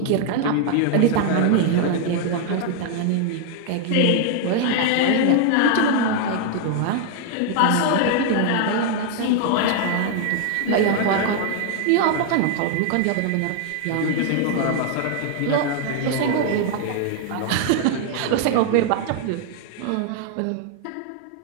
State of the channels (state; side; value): different; both; correlation 0.00